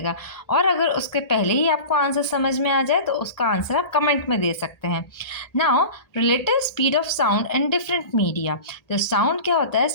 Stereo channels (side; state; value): right; late; 1.8 ms